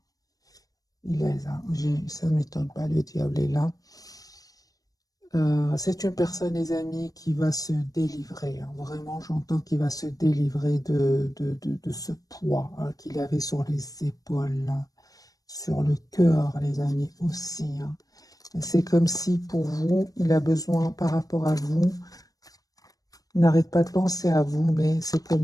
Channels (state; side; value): late; right; 0.17 ms